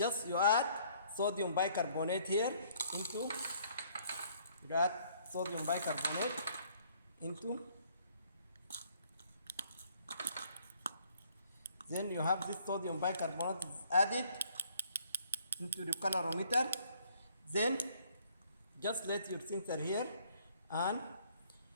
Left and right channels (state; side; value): inverted; both; correlation -0.62